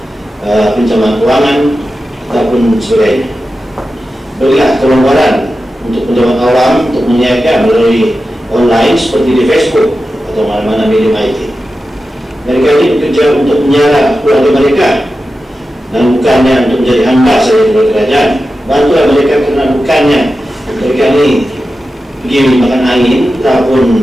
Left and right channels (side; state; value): both; normal; correlation 0.92